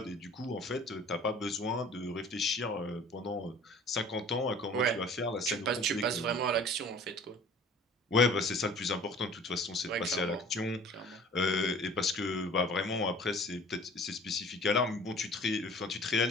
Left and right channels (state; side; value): normal; both; correlation 0.48